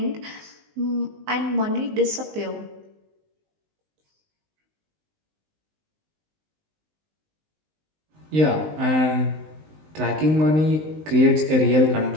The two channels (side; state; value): left; late; 19 ms